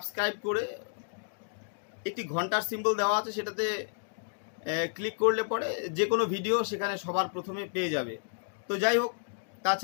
করে একটি ঘন্টার সিম্বল দেওয়া আছে, সেটাতে ক্লিক করলে পরে যে কোনো ভিডিও সেখানে সবার প্রথমে পেয়ে যাবে। তো যাই হোক,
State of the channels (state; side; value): silent; right; digital silence